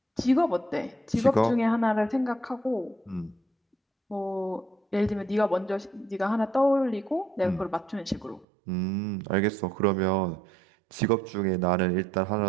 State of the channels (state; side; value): drops out; left; at 8.5 s